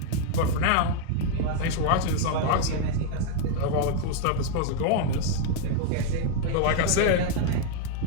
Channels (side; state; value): both; different; correlation 0.00